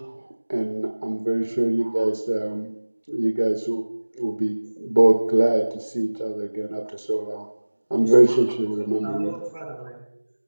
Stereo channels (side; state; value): both; inverted; correlation -1.00